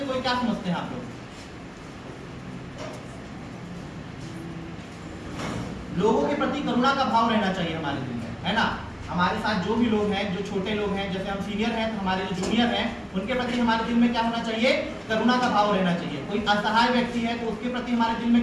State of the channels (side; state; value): both; identical; correlation 1.00